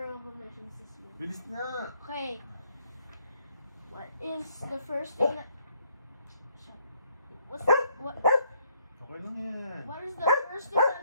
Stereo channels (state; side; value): inverted; both; correlation -0.69